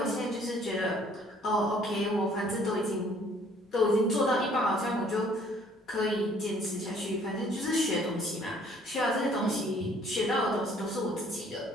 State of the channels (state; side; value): normal; both; correlation 0.59